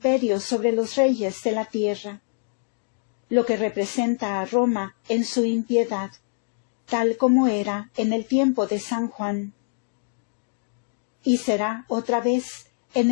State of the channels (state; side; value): silent; right; 62 dB below the other